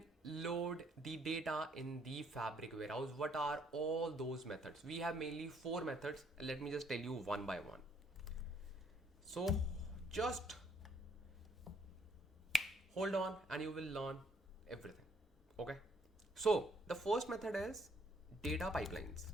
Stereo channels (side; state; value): both; normal; correlation 0.66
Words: load the data in the Fabric warehouse? What are all those methods? We have mainly 4 methods. Let me just tell you one by one. So just hold on and you will learn everything. Okay, So the first method is data pipelines